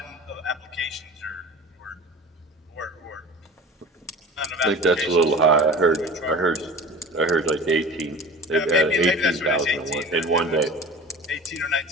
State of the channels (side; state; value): both; normal; correlation 0.39